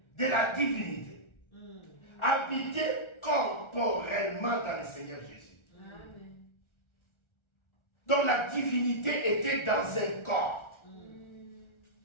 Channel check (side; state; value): right; late; 1.4 ms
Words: De la divinité. Habiter corporellement dans le Seigneur Jésus. Donc la divinité était dans un corps.